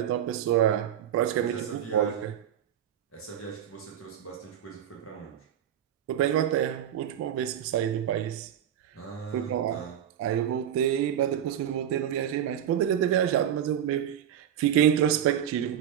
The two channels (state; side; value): quieter; left; 10.0 dB